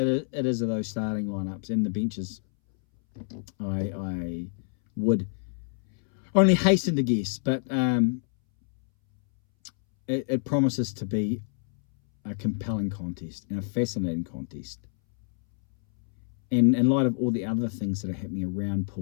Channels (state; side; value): silent; right; 60 dB below the other